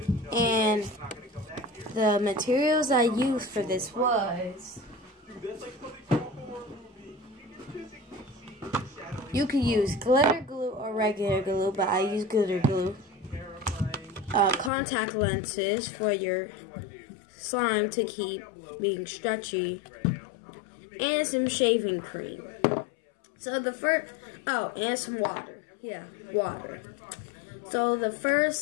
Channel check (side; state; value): right; drops out; at 14.7 s